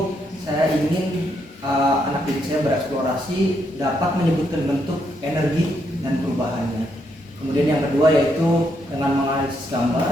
saya ingin anak didik saya bereksplorasi dapat menyebutkan bentuk, energi, dan perubahannya. Kemudian yang kedua yaitu dengan menganalisis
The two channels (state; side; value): normal; both; correlation 0.77